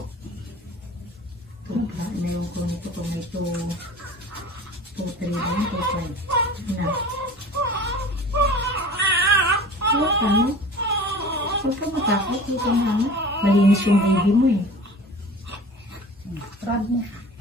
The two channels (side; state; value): both; normal; correlation 0.41